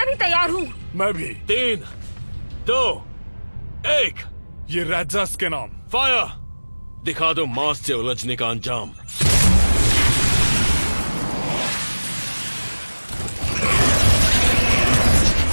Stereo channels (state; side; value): inverted; both; correlation -1.00